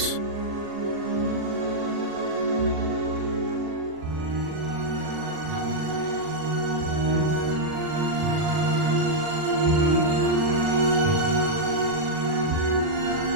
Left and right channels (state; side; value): late; left; 40 ms